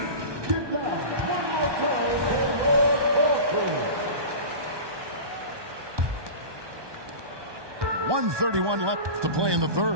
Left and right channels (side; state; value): left; late; 1.2 ms